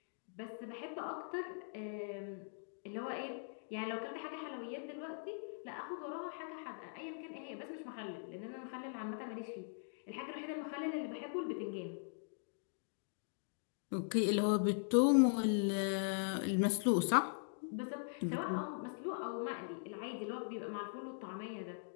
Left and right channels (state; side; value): silent; right; digital silence